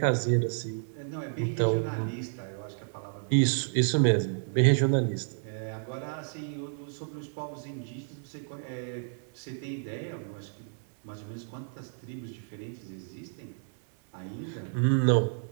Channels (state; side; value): silent; left; 57 dB below the other